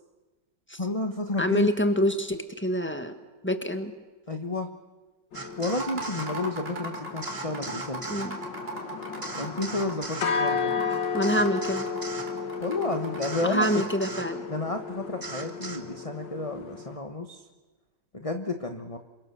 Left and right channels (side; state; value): both; normal; correlation 0.10